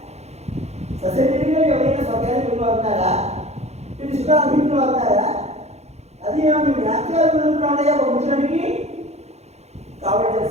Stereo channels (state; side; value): late; left; 0.31 ms